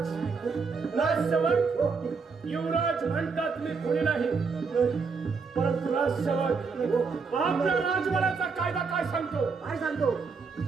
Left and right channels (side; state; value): left; quieter; 5.0 dB